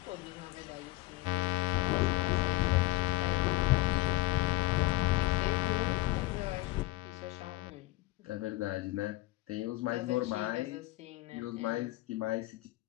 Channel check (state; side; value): quieter; right; 20.8 dB